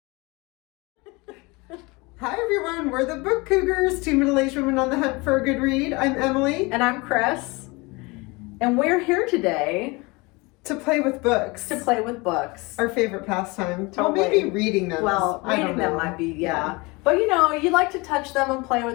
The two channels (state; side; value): quieter; right; 25.4 dB